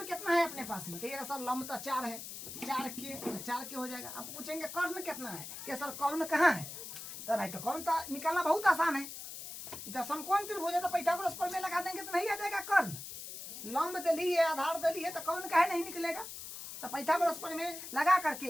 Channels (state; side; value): noise; left; hiss, 10 dB below the sound